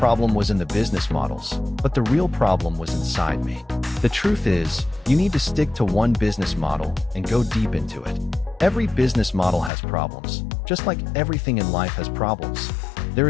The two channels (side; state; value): right; drops out; at 9.7 s